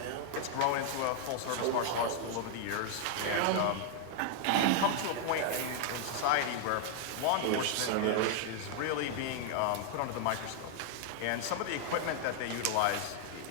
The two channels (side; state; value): both; different; correlation 0.00